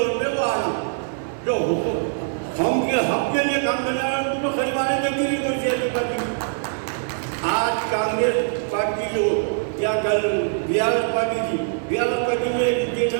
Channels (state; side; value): silent; left; 64 dB below the other